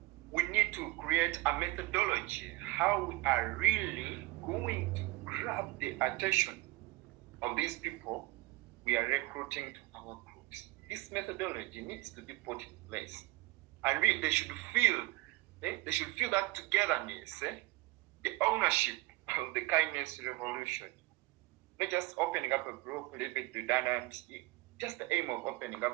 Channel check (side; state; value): left; quieter; 19.6 dB